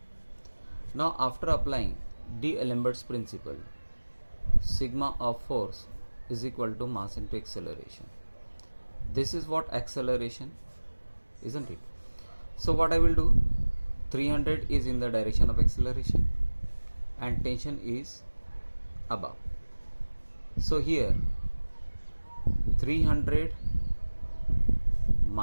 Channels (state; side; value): inverted; both; correlation -1.00